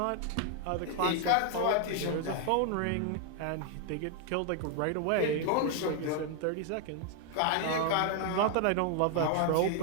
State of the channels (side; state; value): both; different; correlation 0.00